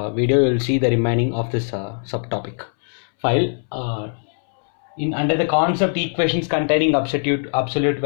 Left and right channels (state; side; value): silent; right; 65 dB below the other